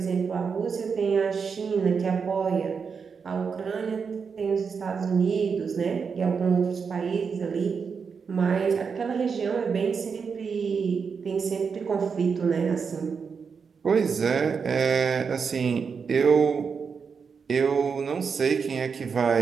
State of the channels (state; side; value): quieter; left; 5.8 dB